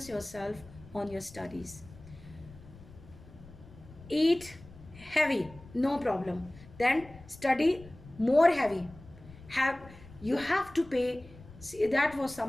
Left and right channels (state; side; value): noise; left; rumble, 20 dB below the sound